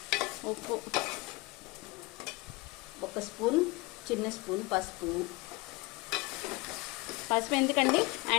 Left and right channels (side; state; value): right; quieter; 23.8 dB